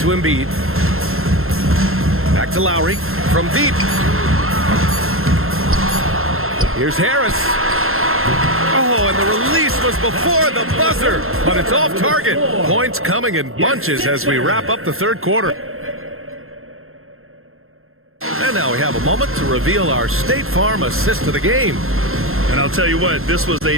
Embiid. Back to Lowry from deep. Here's Harris. Oh, and the release was before the buzzer, but it's off target. Points coming in bunches as we wrap up the third quarter. And now we have a moment to reveal our State Farm assist of the game. And I'll tell you what, this was a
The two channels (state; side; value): late; left; 0.61 ms